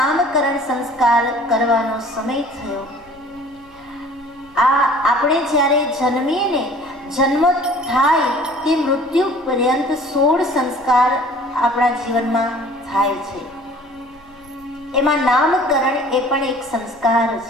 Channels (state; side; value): noise; left; rumble, 30 dB below the sound